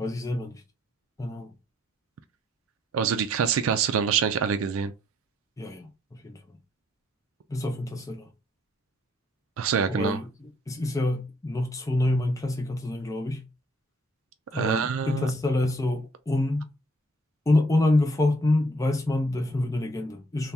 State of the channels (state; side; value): normal; both; correlation 0.66